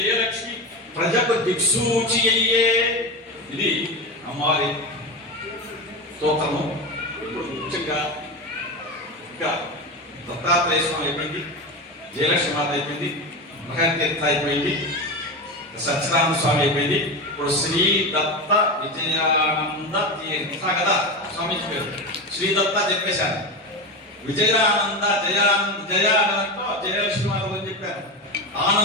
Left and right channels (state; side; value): normal; both; correlation 0.20